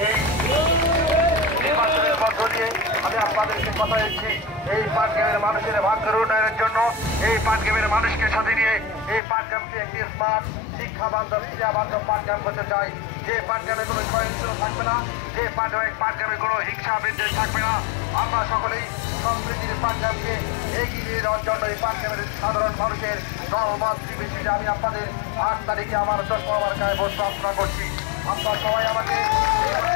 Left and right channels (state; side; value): drops out; right; at 9.2 s